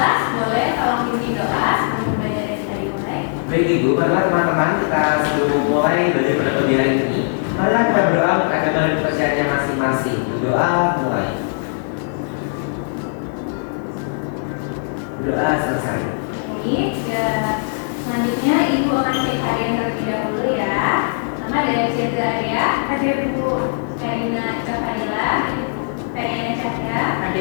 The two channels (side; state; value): right; silent; digital silence